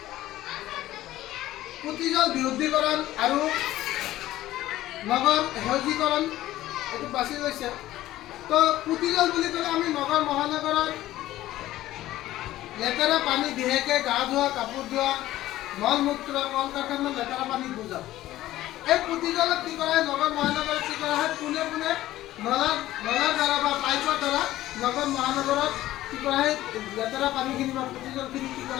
পুতিজল বিশুদ্ধীকৰণ আৰু নগৰ সেউজীকৰণ এইটো বাছি লৈছে। তো পুতিজল বুলি ক'লে আমি নগৰ মহানগৰত লেতেৰা পানী বিশেষকৈ গা ধোৱা, কাপোৰ ধোৱা, মল মূত্ৰ, কল কাৰখানাৰ লেতেৰা পানী বুজাওঁ। এই পুতিজলত কি কৰা হয়, নগৰ মহানগৰত কি কৰা হয়, পোনে পোনে নলাৰ দ্বাৰা বা পাইপৰ দ্বাৰা নগৰ মহানগৰত কি কৰা হয়, লেতেৰা পানীখিনি বা পুতিজলখিনি কি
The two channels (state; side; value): quieter; right; 15.0 dB